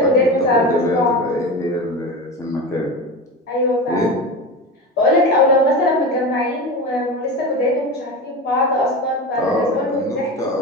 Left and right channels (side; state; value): both; normal; correlation 0.26